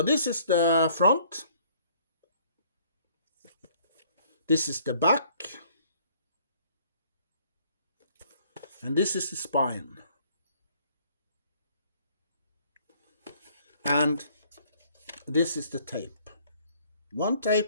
this is the front. This is the back. And this is the spine. And this is the tape. One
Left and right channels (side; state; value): both; inverted; correlation -0.60